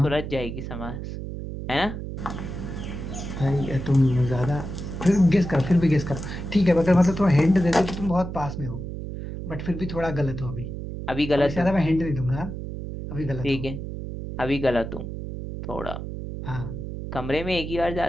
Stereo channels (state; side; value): noise; right; hum, 7 dB below the sound